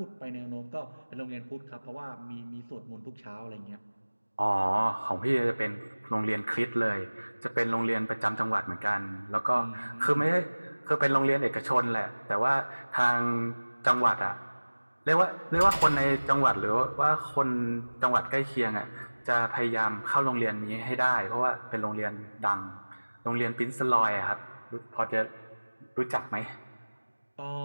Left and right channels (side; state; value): both; inverted; correlation -1.00